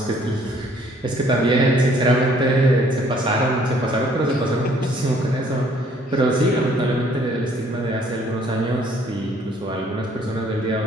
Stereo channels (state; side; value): normal; both; correlation 0.61